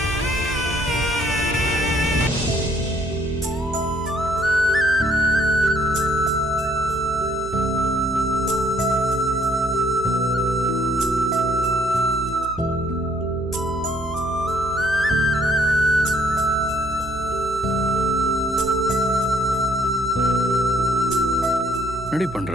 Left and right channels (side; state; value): right; noise; hum, 12 dB below the sound